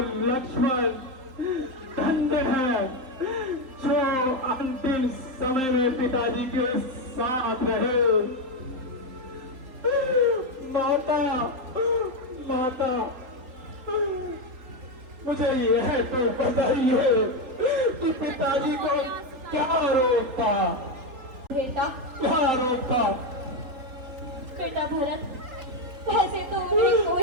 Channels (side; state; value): left; late; 3.8 ms